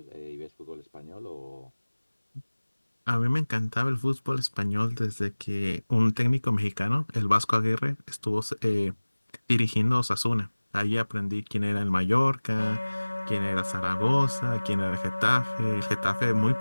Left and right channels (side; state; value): both; inverted; correlation -1.00